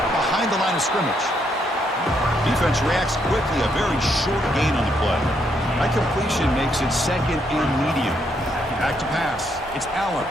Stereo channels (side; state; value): both; normal; correlation 0.75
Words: behind the line of scrimmage. Defense reacts quickly, a very short gain on the play. That completion makes it second and medium. Back to pass. It's Allen.